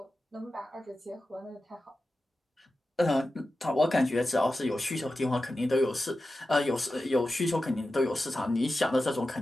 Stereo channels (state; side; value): normal; both; correlation 0.92